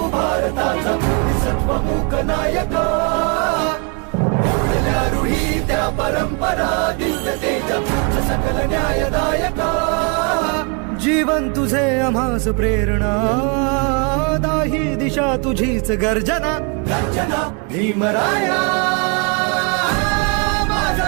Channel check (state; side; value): quieter; left; 34.6 dB